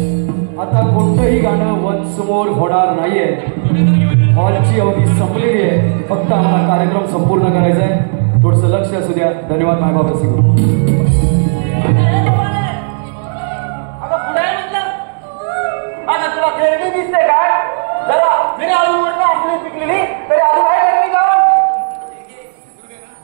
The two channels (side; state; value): left; silent; digital silence